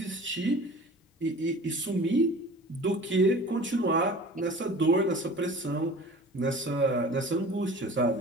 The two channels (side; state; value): both; normal; correlation 0.42